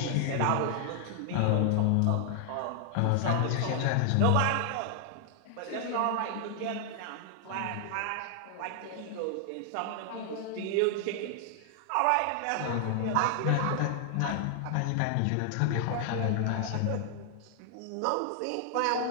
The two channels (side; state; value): both; different; correlation 0.00